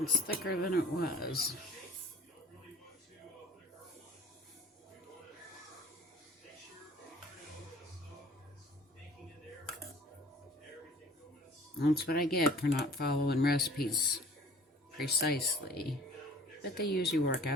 It's thicker than it was. That's what I get for not following recipes precisely. But they usually work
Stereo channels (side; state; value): both; normal; correlation 0.50